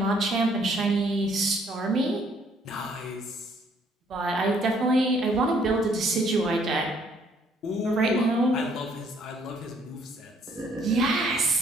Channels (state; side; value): normal; both; correlation 0.64